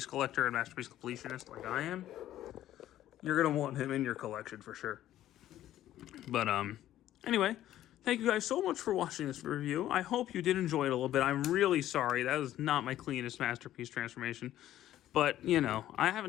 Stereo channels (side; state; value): right; quieter; 12.9 dB